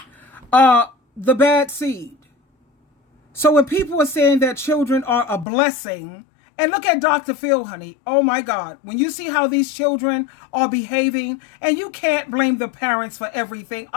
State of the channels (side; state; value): right; drops out; at 5.5 s